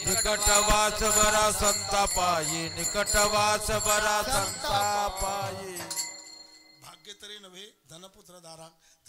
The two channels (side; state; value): both; identical; correlation 1.00